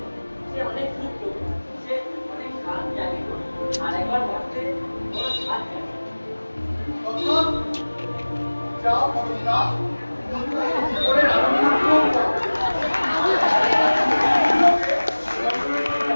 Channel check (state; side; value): inverted; both; correlation -1.00